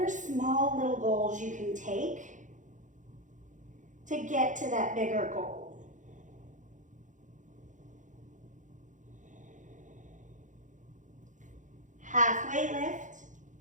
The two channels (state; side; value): late; left; 0.36 ms